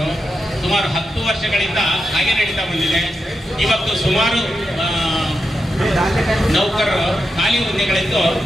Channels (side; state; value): both; normal; correlation 0.87